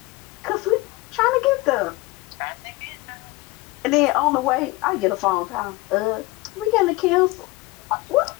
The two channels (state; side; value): quieter; right; 21.4 dB